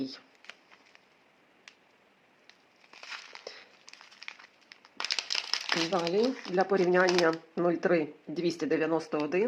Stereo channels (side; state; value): both; identical; correlation 1.00